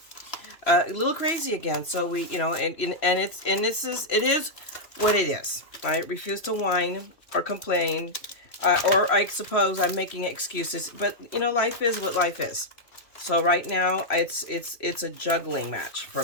a little crazy again. So we, you know, and it is what it is. I refuse to whine or complain, or I suppose I'm making excuses. But you know, life is what life is. So right now, it's a juggling match for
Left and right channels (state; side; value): late; right; 3.0 ms